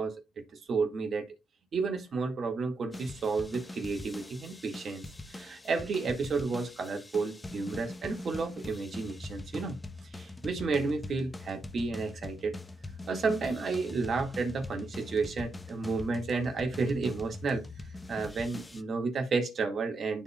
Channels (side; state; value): left; quieter; 3.4 dB